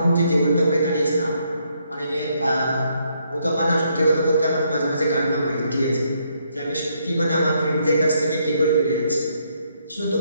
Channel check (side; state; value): both; inverted; correlation -0.73